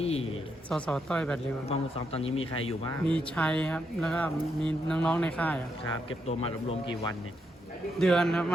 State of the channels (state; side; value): normal; both; correlation 0.80